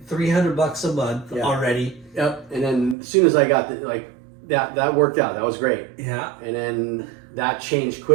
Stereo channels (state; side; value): drops out; left; at 3.0 s